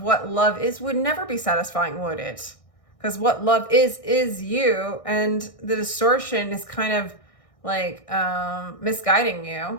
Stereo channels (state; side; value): late; right; 1.6 ms